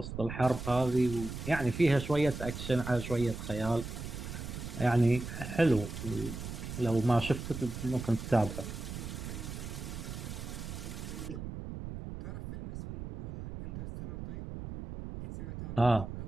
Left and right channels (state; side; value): noise; right; rumble, 8 dB below the sound